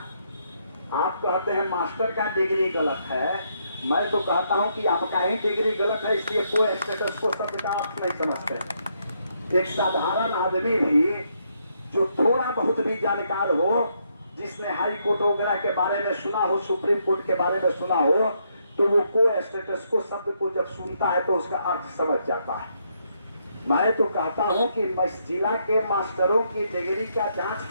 आप कहते हैं मास्टर का डिग्री गलत है, मैं तो कहता हूं कि आपका ही डिग्री गलत है, इसलिए कोई स्टेटस को शब्द का आप नहीं समझते। एक साधारण आदमी भी जो थोड़ा बहुत भी जानकार हो, जिसने हाई कोर्ट वगैरह के बारे में सुना हो, सुप्रीम कोर्ट के बारे में सुना हो, तो वो को स्टेटस को शब्द को जब सुनता है तो उसका अर्थ समझ जाता है। मैं तो कहता हूं कि जिला के मास्टरों की डिग्री का जांच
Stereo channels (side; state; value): both; inverted; correlation -0.75